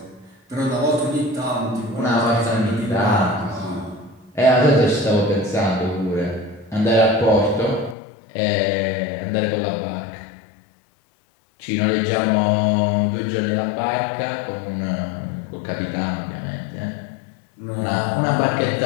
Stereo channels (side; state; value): right; drops out; at 8.0 s